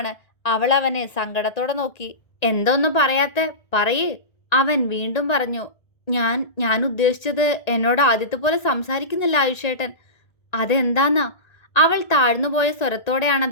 അവൾ അവനെ സങ്കടത്തോടെ നോക്കി. എന്തോന്നും പറയാത്തെ? പറയേ. അവൻ വീണ്ടും പറഞ്ഞു. ഞാൻ ഉദ്ദേശിച്ചത് എന്നോട് ആദ്യത്തെ പോലെ സംസാരിക്കുന്നില്ല ആയുഷേട്ടൻ. അതെന്താന്നാ? അവൾ താഴ്ന്നുപോയ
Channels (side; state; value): right; late; 1.9 ms